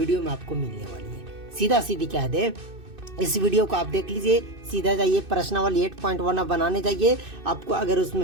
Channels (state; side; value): late; left; 2.6 ms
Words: में आपको मिलने वाली है। सीधा सीधी कह दे, इस वीडियो को आप देख लीजिए, सीधा जाइए प्रश्नावली 8.1 आप बनाने जाइए। आपको अगर